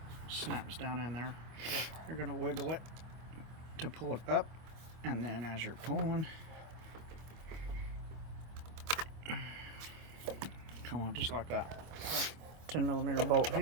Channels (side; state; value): left; late; 25 ms